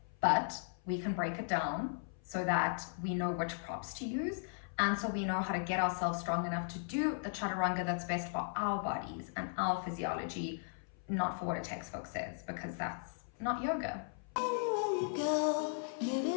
But we can break it down so that we know which props to use, and so we know how to get ourselves strong enough to do the Chaturanga that's best for our bodies and our physiology, not for what a textbook says, because that's not yoga.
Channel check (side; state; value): right; silent; 53 dB below the other